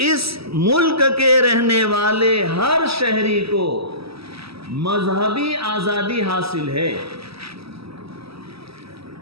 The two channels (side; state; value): left; late; 0.76 ms